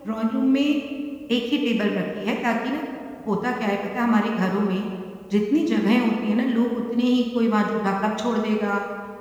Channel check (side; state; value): both; identical; correlation 1.00